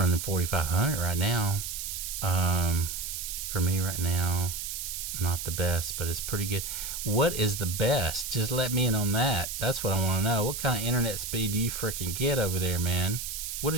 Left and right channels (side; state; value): right; noise; hiss, 5 dB below the sound